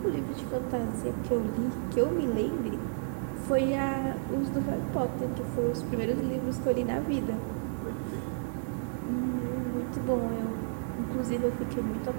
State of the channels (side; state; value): left; silent; digital silence